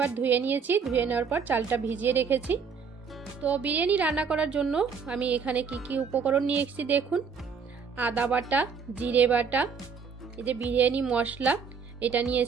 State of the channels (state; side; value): quieter; left; 6.0 dB